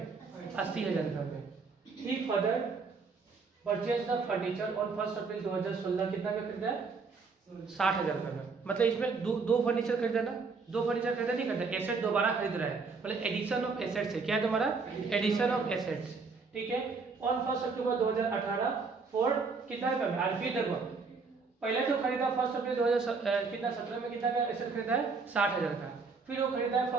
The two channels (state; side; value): quieter; left; 4.6 dB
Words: 80,000 रुपया में। He further purchase the furniture on 1 April 2016, कितना में खरीदा है, 60,000 रुपये में। मतलब इसमें दो फर्नीचर खरीदा ना, दो फर्नीचर खरीदा नहीं खरीदा, एसेट दोबारा खरीद रहा है, मतलब एडिशन ऑफ एसेट्स है। क्या है तुम्हारा, एडिशन ऑफ एसेट्स, ठीक है। ऑन 1 अक्टूबर 2018 फॉर कितना रुपये में, आरपी देखो, पहले तो खरीदा 1 अप्रैल 2017 में, कितना का एसेट खरीदा है, 60,000 का। फिर वो खरीदा है